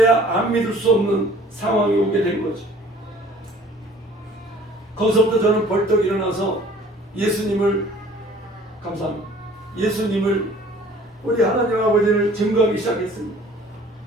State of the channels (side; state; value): both; normal; correlation 0.52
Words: 안 믿을 수 없는 상황이 오게 된 거죠. 거기서부터 저는 벌떡 일어나서 예수님을 감사합니다. 예수님을 우리 하나님 아버지를 증거하기 시작했습니다.